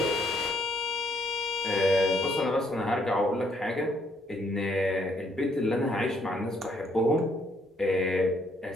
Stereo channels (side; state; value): both; normal; correlation 0.69